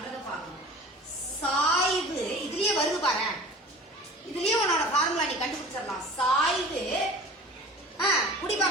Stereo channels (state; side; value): normal; both; correlation 0.41